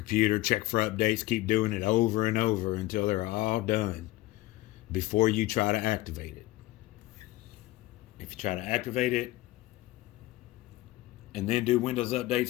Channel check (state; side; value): quieter; right; 17.5 dB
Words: check for updates, keep doing it over and over until they're all done before you try to activate it. If you try to activate it and then do Windows